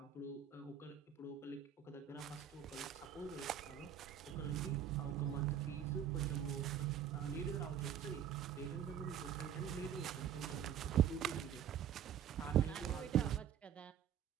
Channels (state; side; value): quieter; left; 9.3 dB